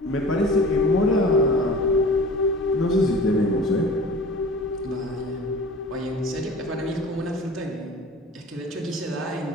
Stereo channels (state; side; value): normal; both; correlation 0.41